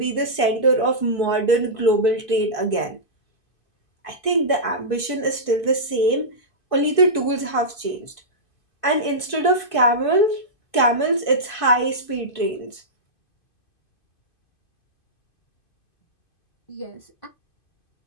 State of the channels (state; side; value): late; right; 2.5 ms